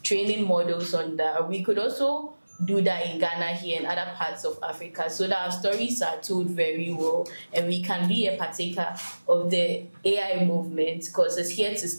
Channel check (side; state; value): both; inverted; correlation -1.00